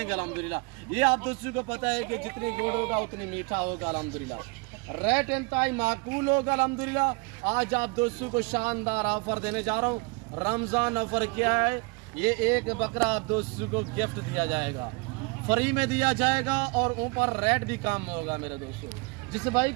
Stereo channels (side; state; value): left; quieter; 29.5 dB